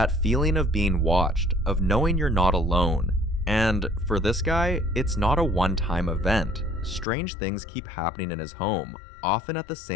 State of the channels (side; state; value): right; drops out; at 7.1 s